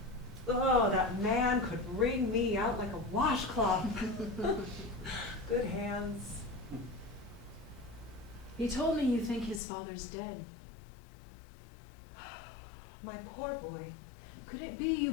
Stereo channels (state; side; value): drops out; right; at 9.6 s